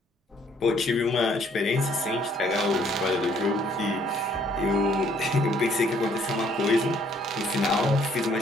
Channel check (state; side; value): normal; both; correlation 0.64